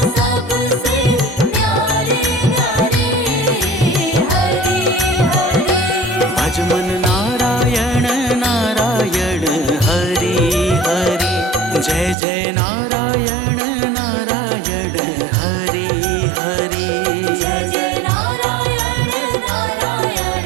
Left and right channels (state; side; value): drops out; left; at 12.2 s